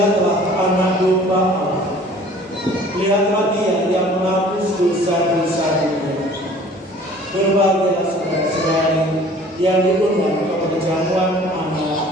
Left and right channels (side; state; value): both; normal; correlation 0.50